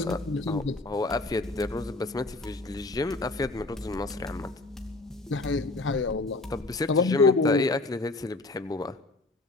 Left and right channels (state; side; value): quieter; right; 3.1 dB